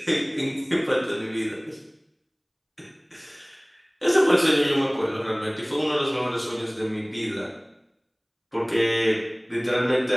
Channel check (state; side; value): identical; both; correlation 1.00